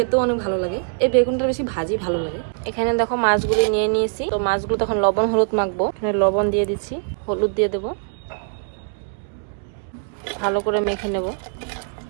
অনেক ভালো লাগে। এই বেগুনটা বেশি ভাজি ভালো লাগে। এখানে দেখো মাছগুলি নিয়ে নিয়েছি। তো মাছগুলো তখন লবণ হলুদ মাখবো। এখানে লবণ দিয়ে দিচ্ছি, হলুদ দিয়ে দেবো, ভালো করে মেখে নেব।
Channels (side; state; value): left; silent; digital silence